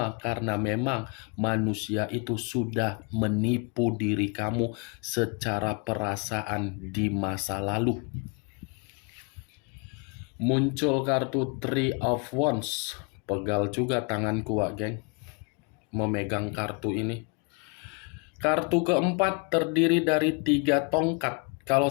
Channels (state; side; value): quieter; right; 32.7 dB